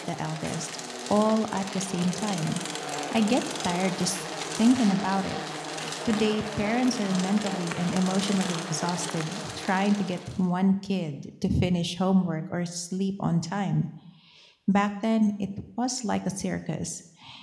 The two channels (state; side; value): identical; both; correlation 1.00